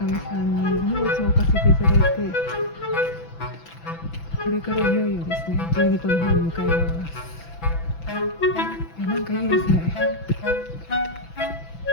さんに荷物を置かせていただいて、これからいよいよですね、12個の方に向かいます。いや、なんかいいですね。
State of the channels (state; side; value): late; right; 6.0 ms